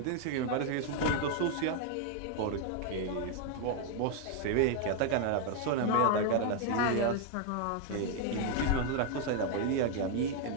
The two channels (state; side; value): different; both; correlation 0.00